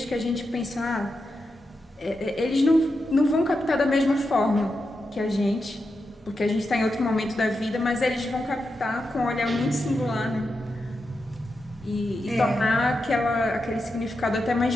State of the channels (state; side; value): normal; both; correlation 0.87